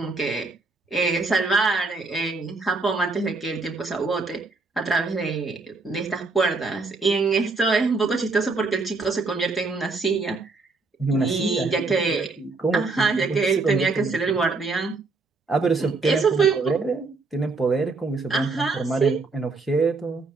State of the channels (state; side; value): quieter; left; 3.8 dB